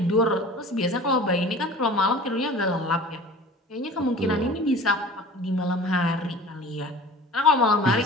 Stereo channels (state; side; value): normal; both; correlation 0.41